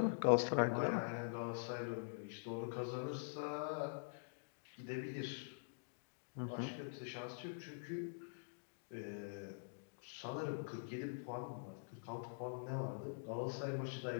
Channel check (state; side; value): silent; right; digital silence